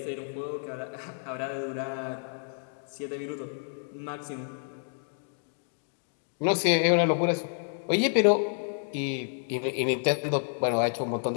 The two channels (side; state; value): right; silent; digital silence